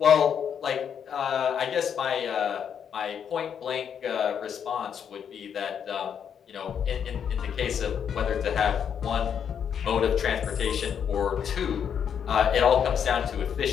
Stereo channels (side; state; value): right; quieter; 8.0 dB